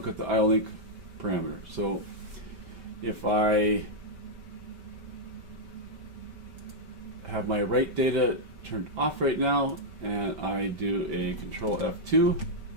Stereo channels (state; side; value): late; left; 5.2 ms